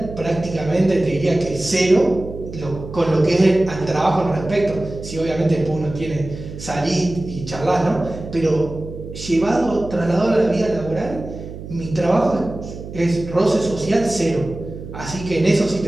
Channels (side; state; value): right; noise; hum, 11 dB below the sound